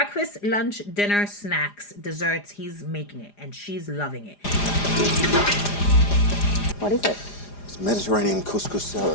lunch, dinner, snacks, desserts. He's making it, and she's loving it. What is it? It's Mediterranean couscous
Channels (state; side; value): late; right; 4.9 ms